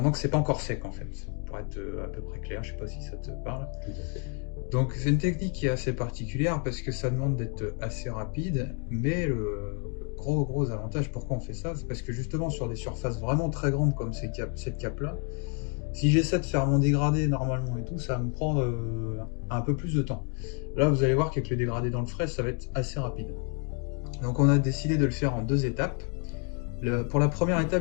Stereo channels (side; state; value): right; quieter; 39.5 dB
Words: que c'est pas encore sec en fait, pour être à peu près clair, je sais pas si ça te parle. Tout à fait. Donc c'est une technique qui est assez particulière parce que ça demande d'être assez rapide, mais le gros avantage pourquoi on fait ça, c'est parce que justement sur des surfaces vraiment très grandes comme cette cape là, si j'essaie de faire mon dégradé normalement et tout, ça va me prendre un peu plus de temps. Là vous allez voir qu'avec le dégradé dans le frais, ça va être assez rapide. Donc on a décidé de le faire en 2 étapes. Pour la première